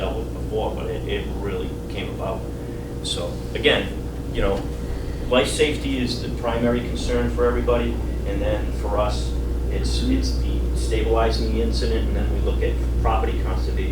with before. But it really came about. So again, life safety is the primary concern for everybody, and then for us, it's the stabilizing the incident, and then we look at property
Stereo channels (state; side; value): identical; both; correlation 1.00